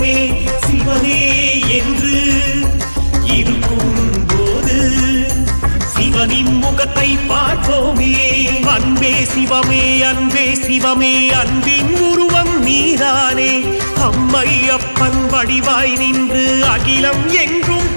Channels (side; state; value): both; inverted; correlation -1.00